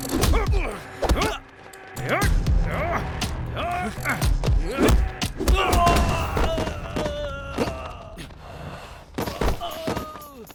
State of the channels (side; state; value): both; identical; correlation 1.00